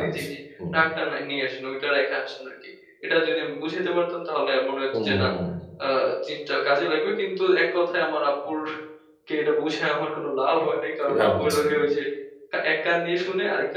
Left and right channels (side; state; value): both; identical; correlation 1.00